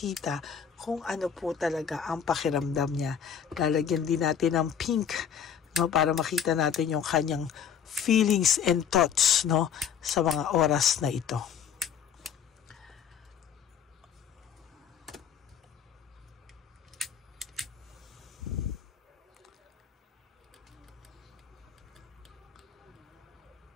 kung ano po talaga ang pakiramdam niya. Lalagyan din natin ng pink, no, para makita natin yung kanyang feelings and thoughts, no, sa mga oras na ito.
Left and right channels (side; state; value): right; quieter; 7.9 dB